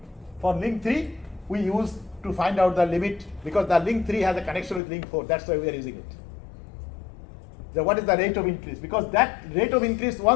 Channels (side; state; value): right; drops out; at 4.8 s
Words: for link 3, we use to find out the limit, because the link 3 has a connection with link 4, that's why we are using it. So what is the rate of increase? Because that rate of increase,